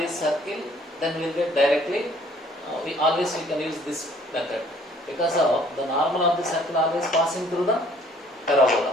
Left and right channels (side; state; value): both; normal; correlation 0.58